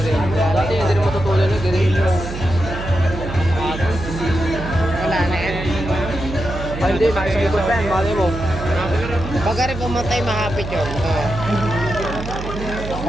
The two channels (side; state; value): right; noise; hum, 8 dB below the sound